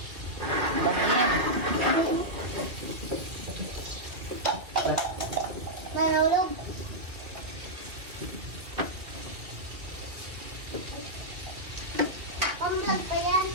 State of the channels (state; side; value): late; left; 2.4 ms